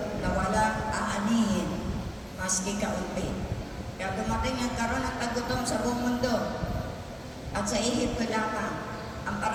na walang aanihin, maski kaunti. Kaya dumating ang karoon ng tagutom sa buong mundo. At sa Ehipto lamang, ang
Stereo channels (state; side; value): identical; both; correlation 1.00